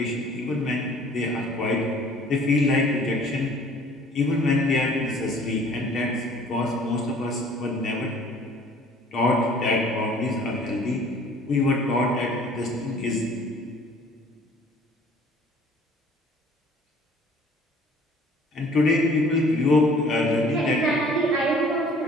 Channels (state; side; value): normal; both; correlation 0.53